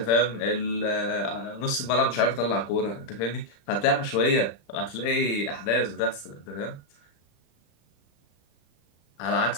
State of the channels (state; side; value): late; right; 35 ms